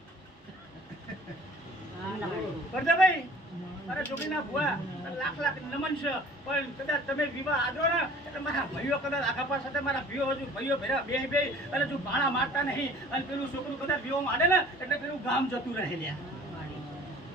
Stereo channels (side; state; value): both; normal; correlation 0.49